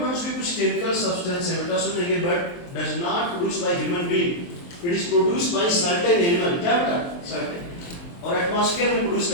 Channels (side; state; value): right; late; 23 ms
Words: भी कुछ केमिकल सब्सटेंस है बेटा, सुनेंगे, but does not produce by human being, it is produced by certain animal. क्या बेटा? सर्टेन। और एटमॉस्फेयर में प्रोड्यूस